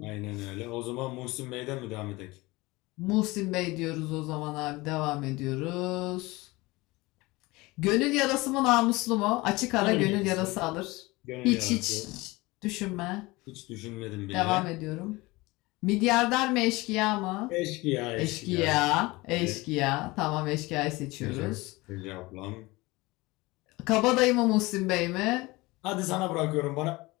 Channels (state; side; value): quieter; right; 22.0 dB